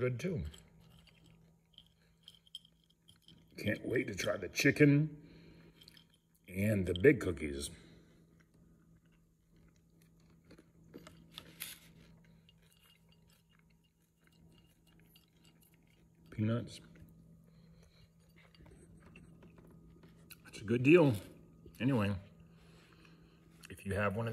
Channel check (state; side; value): identical; both; correlation 1.00